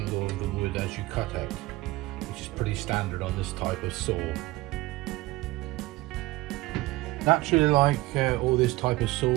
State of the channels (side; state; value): left; quieter; 19.5 dB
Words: of the wood as you cut it, which is pretty standard on this type of saw. Naturally, like all this type of saw,